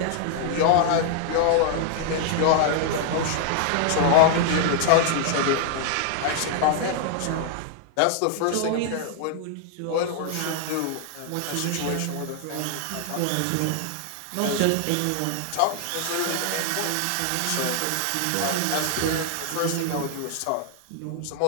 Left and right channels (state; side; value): different; both; correlation 0.00